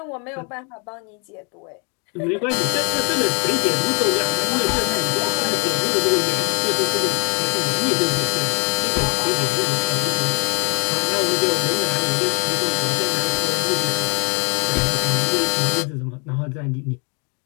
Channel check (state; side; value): quieter; right; 35.6 dB